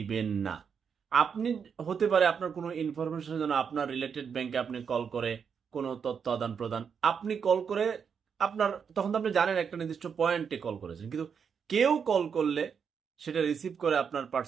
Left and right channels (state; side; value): quieter; left; 6.7 dB